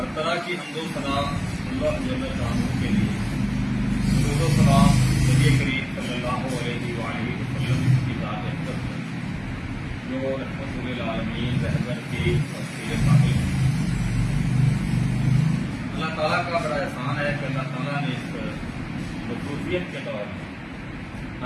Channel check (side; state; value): both; identical; correlation 1.00